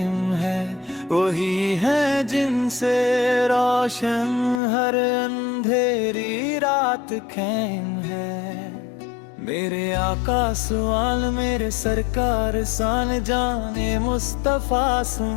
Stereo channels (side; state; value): right; drops out; at 4.6 s